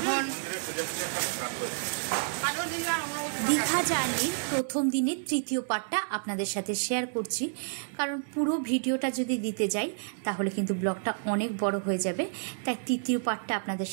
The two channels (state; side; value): silent; left; digital silence